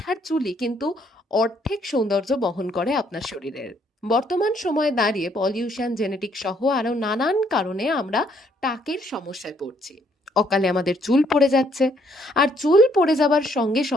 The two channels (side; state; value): both; normal; correlation 0.68